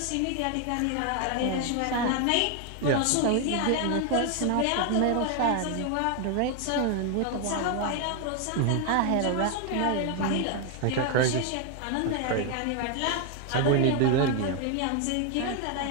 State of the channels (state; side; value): different; both; correlation 0.01